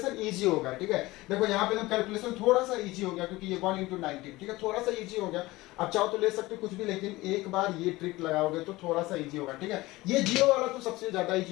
इजी होगा, ठीक है। देखो यहाँ पे तो कैलकुलेशन थोड़ा सा इजी हो गया, क्योंकि ये 1 × 19, ठीक है, थोड़ा सा इजी हो गया। आप चाहो तो ले सकते हो कुछ भी, लेकिन एक बार ये ट्रिक लगाओगे तो थोड़ा सा इजी होगा, ठीक है। ये 0 वाला तो सबसे ज्यादा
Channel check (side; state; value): right; quieter; 19.7 dB